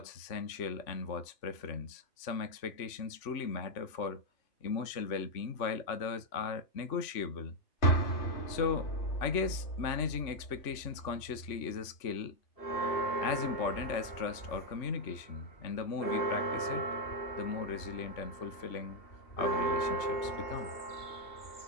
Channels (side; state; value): right; late; 3.5 ms